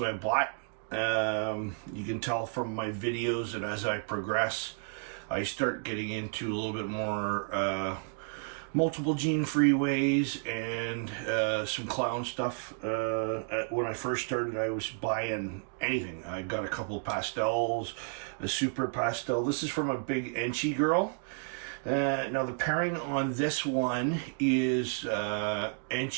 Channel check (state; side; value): silent; left; 57 dB below the other